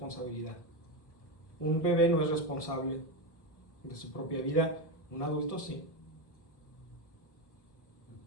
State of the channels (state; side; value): late; right; 1.7 ms